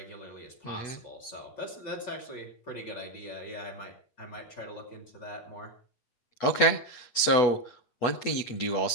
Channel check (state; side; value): late; right; 8.1 ms